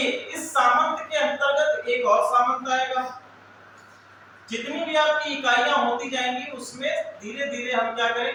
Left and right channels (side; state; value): both; identical; correlation 1.00